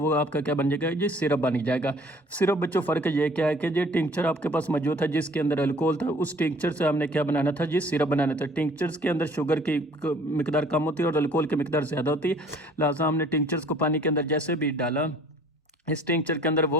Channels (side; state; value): both; normal; correlation 0.54